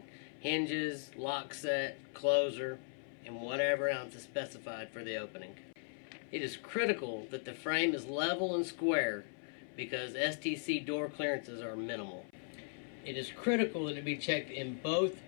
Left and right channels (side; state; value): right; silent; 52 dB below the other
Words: hinges, lock set, closer, and whatever else is specified for the opening. It is critical that the frame is level and square because STC door clearances are minimal. It is critical that it be checked in both